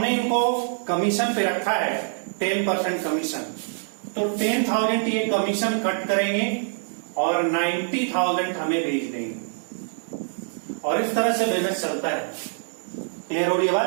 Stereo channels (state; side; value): silent; left; digital silence